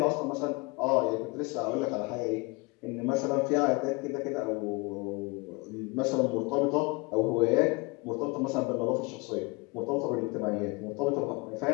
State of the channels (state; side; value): quieter; right; 27.4 dB